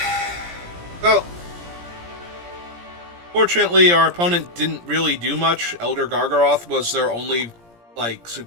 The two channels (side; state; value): left; late; 17 ms